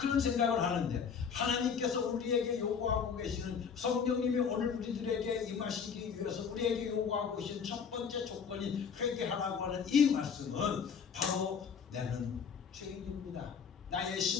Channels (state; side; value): quieter; right; 6.6 dB